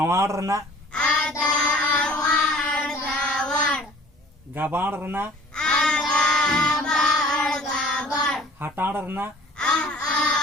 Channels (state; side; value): normal; both; correlation 0.50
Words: रेना गाबाड़ रेना हटाड़ रेना